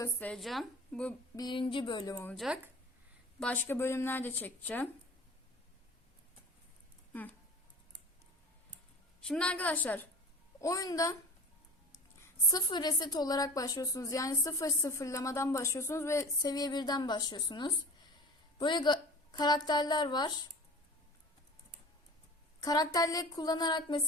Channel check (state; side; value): normal; both; correlation 0.37